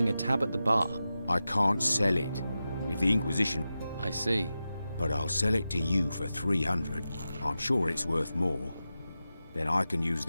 a tab at the bar? I can't sell it. If the Inquisition... I see. But I'll sell it to you for 300. I'm sure it's worth more. Then I can use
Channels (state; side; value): inverted; both; correlation -0.92